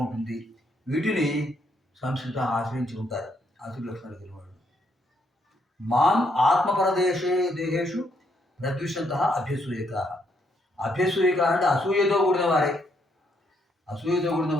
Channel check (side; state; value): both; normal; correlation 0.74